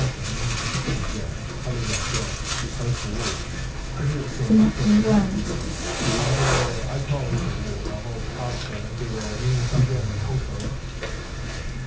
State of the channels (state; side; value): identical; both; correlation 1.00